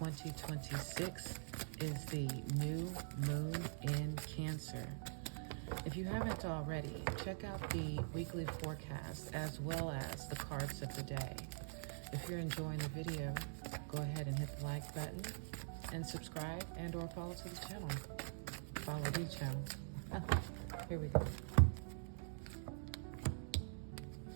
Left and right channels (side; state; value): left; silent; digital silence